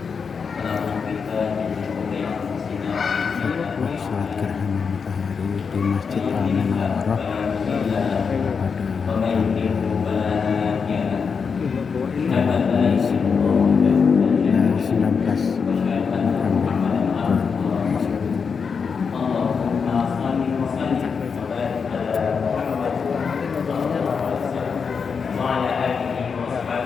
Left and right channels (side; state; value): right; quieter; 5.8 dB